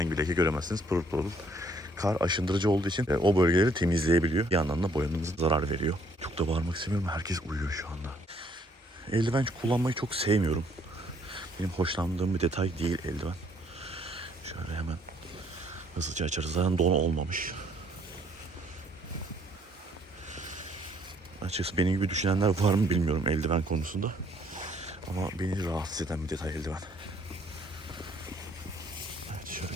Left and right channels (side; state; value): both; normal; correlation 0.65